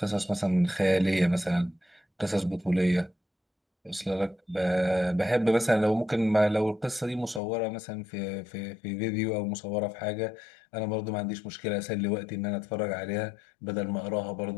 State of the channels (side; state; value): right; drops out; at 7.4 s